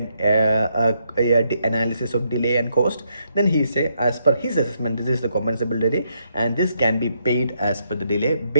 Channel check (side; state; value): both; inverted; correlation -0.76